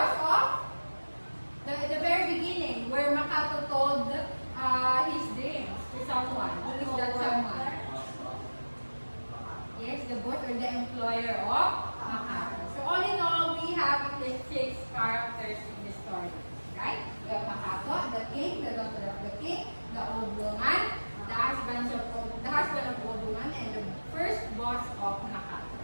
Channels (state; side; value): inverted; both; correlation -1.00